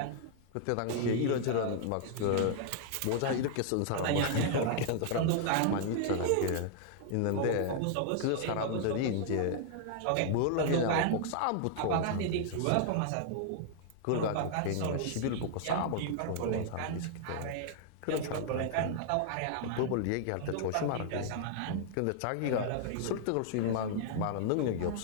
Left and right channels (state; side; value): different; both; correlation -0.01